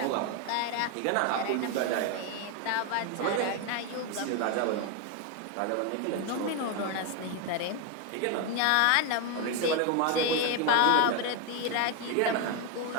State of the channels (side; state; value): both; different; correlation 0.01